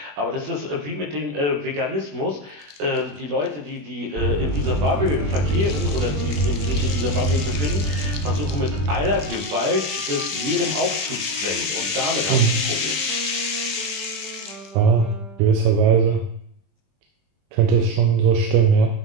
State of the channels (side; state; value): left; late; 20 ms